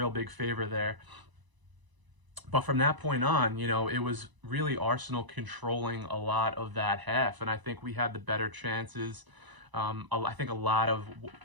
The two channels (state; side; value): late; left; 1.0 ms